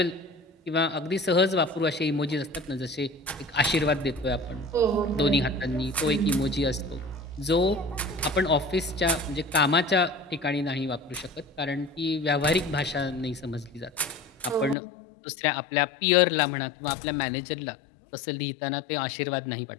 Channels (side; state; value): right; drops out; at 14.8 s